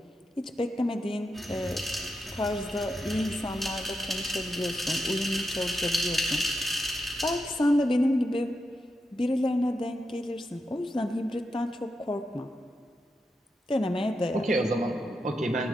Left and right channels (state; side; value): normal; both; correlation 0.87